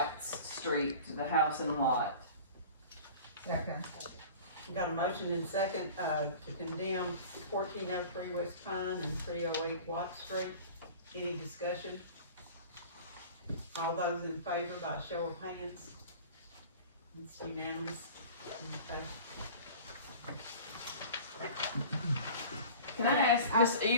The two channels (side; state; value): both; inverted; correlation -0.40